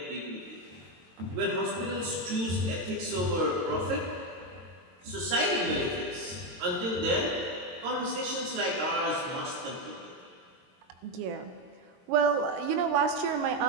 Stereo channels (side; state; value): left; late; 22 ms